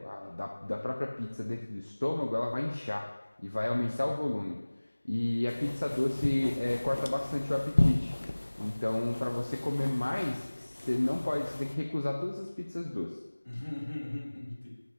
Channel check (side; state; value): both; inverted; correlation -1.00